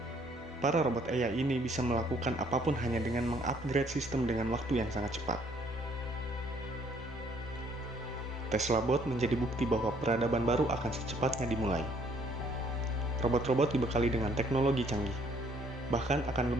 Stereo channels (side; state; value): both; normal; correlation 0.63